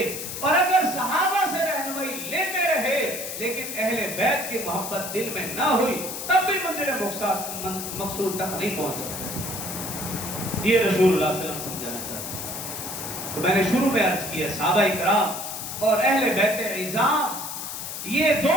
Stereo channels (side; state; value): left; noise; hiss, 7 dB below the sound